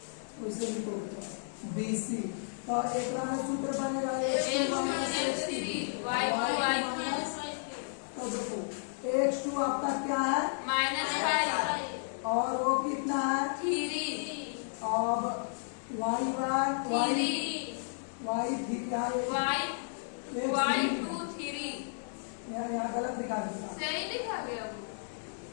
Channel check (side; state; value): right; silent; digital silence